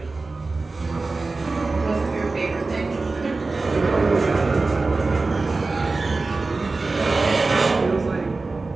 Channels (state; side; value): quieter; left; 3.6 dB